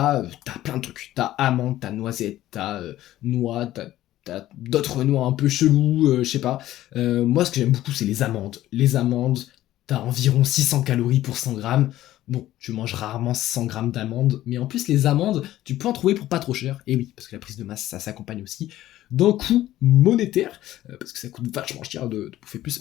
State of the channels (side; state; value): right; quieter; 14.3 dB